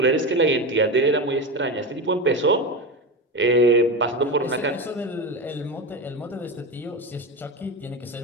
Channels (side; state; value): both; normal; correlation 0.20